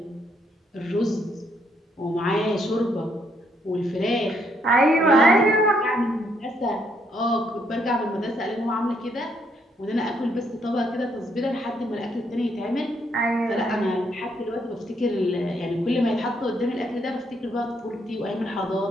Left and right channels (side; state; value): both; normal; correlation 0.72